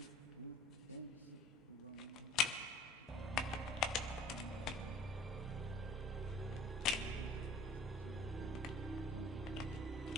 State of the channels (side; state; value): both; normal; correlation 0.48